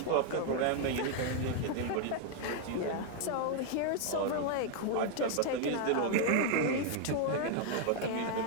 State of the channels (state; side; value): different; both; correlation 0.00